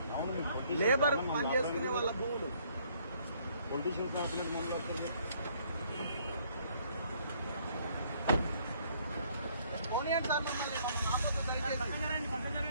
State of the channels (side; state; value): both; inverted; correlation -0.64